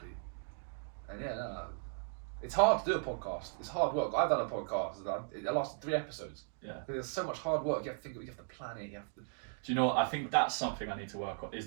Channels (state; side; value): silent; left; digital silence